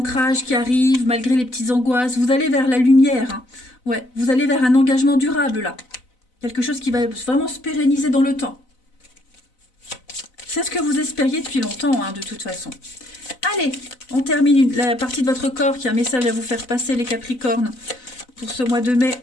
qui arrive, malgré les petites angoisses, vous allez vers la lumière, hein. Ouais, vous allez vers un engagement durable, là. Quelque chose qui va vraiment se pérenniser dans le temps. C'est ce que vous espériez depuis longtemps, hein, de toute façon. Allez, on termine la partie de votre corps qui a un message à vous faire passer, les Capricornes, pour ce mois de mai.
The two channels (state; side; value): late; right; 4.0 ms